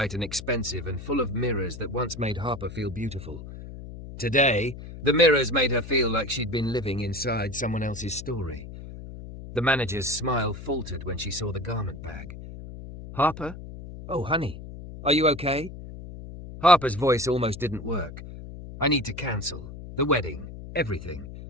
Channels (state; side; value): noise; left; hum, 12 dB below the sound